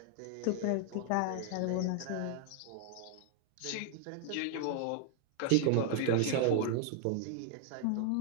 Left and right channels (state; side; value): different; both; correlation 0.00